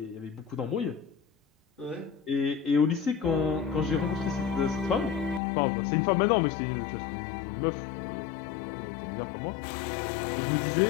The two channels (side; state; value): right; drops out; at 5.4 s